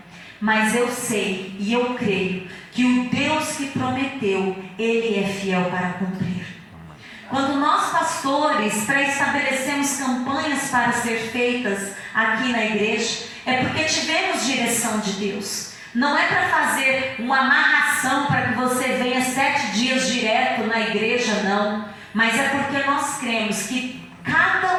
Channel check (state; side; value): identical; both; correlation 1.00